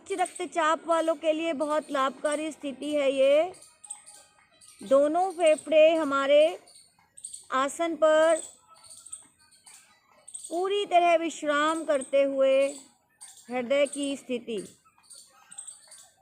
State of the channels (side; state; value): both; identical; correlation 1.00